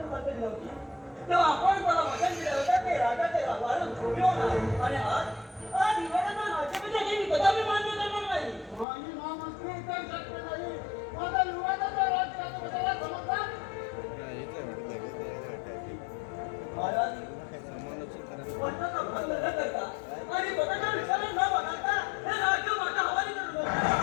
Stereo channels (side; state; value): right; drops out; at 8.8 s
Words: बदलली होती तेव्हा आपण मला वचन दिलं होतं ते राजाचे वाढून झोपले होणार आणि आज युवरांना राज्याभिषेक ही कदापि मान्य करणार नाही. महामंत्री तर शक्य नाही. माझा युवराजाचा राज्याभिषेकाला समजतात महाराज वचनाचा भंग न करता आणि स्वतःच्या विचाराला न बघता हे राज्य माझ्या हवाली करून